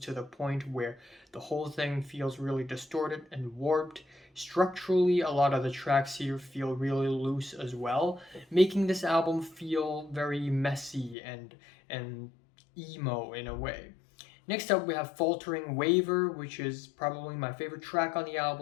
the point where the whole thing feels really distorted and warped. Structurally, a lot of the tracks here feel really loose as well, making this album feel very messy and emo in a way. Next up, we have Faltering Waver, which is probably my favorite track on the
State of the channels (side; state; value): right; drops out; at 11.2 s